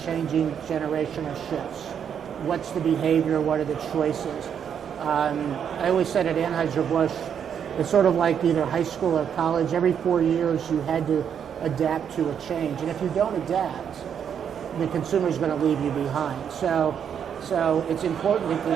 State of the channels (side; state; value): left; quieter; 8.1 dB